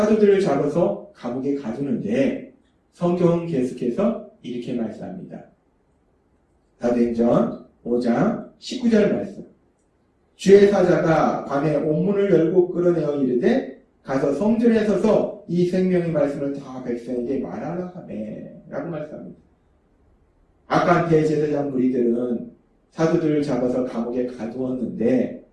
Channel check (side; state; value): both; identical; correlation 1.00